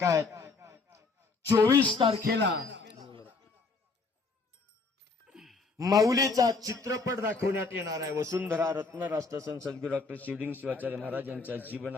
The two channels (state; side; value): quieter; right; 4.1 dB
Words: आहेत. 24 तारखेला माऊलीचा चित्रपट दाखवण्यात येणार आहे. वसुंधरा रत्न राष्ट्रसंत सद्गुरू डॉक्टर शिवलिंग शिवाचार्य महाराज यांच्या